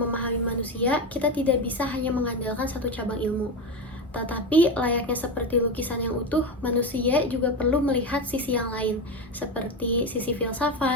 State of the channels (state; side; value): normal; both; correlation 0.17